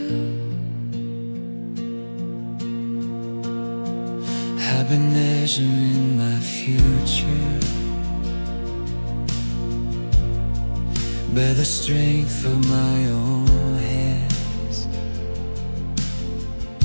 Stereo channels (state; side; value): inverted; both; correlation -1.00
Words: I've been measuring my future by the strength of my own hands.